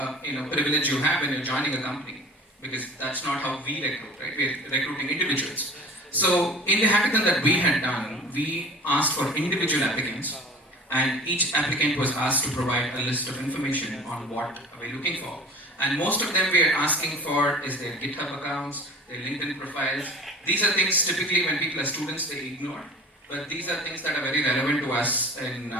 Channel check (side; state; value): both; normal; correlation 0.40